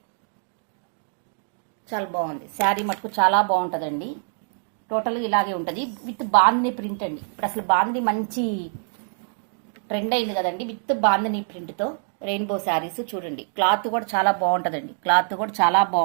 చాలా బాగుంది. శారీ మటుకు చాలా బాగుంటుందండి. టోటల్గా ఇలాగే ఉంటుంది విత్ బాందిని ప్రింట్ అండి. ఇప్పుడు అసలు బాందిని మంచి ట్రెండ్ అయింది కదండి, విత్ బాందిని ప్రింట్తో రెయిన్బో శారీస్ చూడండి. క్లాత్ కూడా చాలా బాగుంటుందండి, క్లాత్ కూడా చాలా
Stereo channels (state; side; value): silent; left; 62 dB below the other